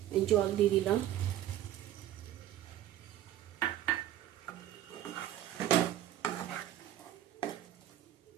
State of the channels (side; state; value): left; quieter; 12.4 dB